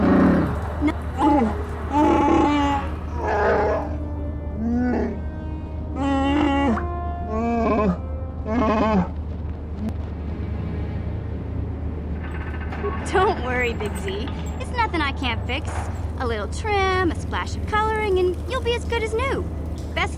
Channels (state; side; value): identical; both; correlation 1.00